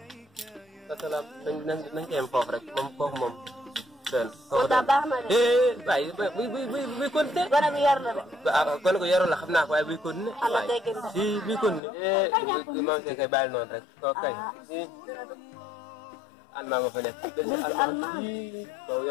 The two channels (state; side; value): drops out; right; at 11.8 s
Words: parce que nañ ko yem foofu rek moom foofu moom. moo tax baax na de. waaye buy continué. gone bu yar la de. gone ko yarul la xam naa ko waaye buy continué. am na teggin de. si buy continué. Maam Say kay bàyyi noonu rek. kooku kay. almaa nga fa nekk. almaa